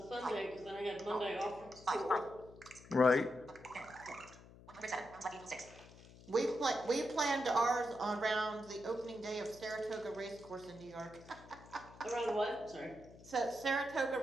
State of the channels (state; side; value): noise; left; hum, 20 dB below the sound